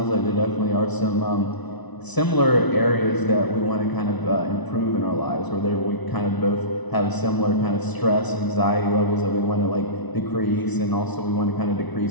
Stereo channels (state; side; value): late; right; 1.0 ms